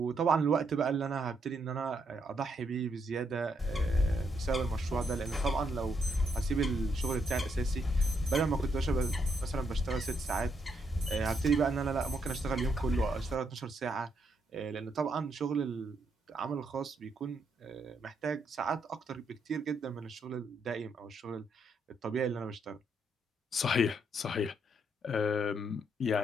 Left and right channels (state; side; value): normal; both; correlation 0.76